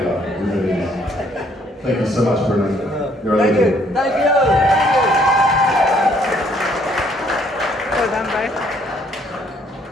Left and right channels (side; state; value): both; normal; correlation 0.65